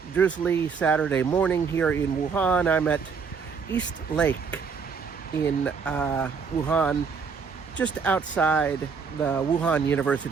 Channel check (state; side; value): quieter; left; 5.7 dB